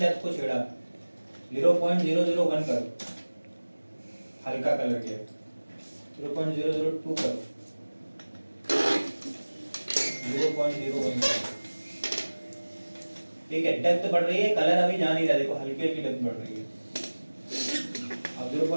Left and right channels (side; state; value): both; inverted; correlation -1.00